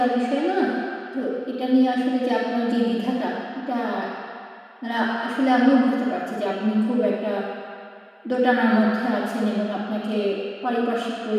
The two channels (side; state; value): both; identical; correlation 1.00